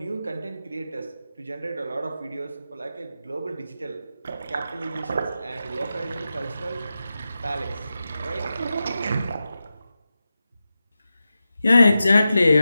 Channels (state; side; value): inverted; both; correlation -0.91